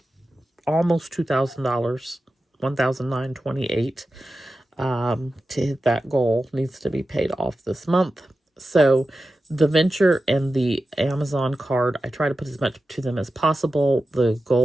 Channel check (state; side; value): normal; both; correlation 0.92